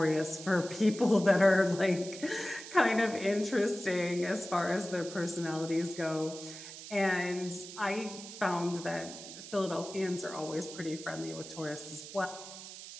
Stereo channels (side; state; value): right; noise; hiss, 13 dB below the sound